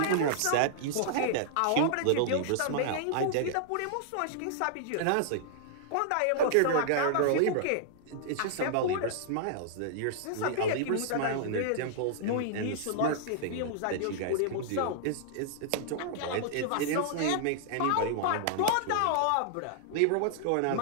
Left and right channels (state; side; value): different; both; correlation -0.01